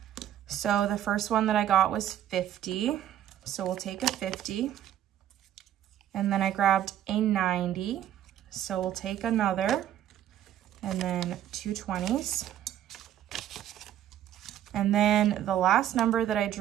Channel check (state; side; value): quieter; left; 11.2 dB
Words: So the first one that I got was 50, so we'll take a 50. And then I grabbed a 90, so we'll take another, and then 2 20s. And then the last number that I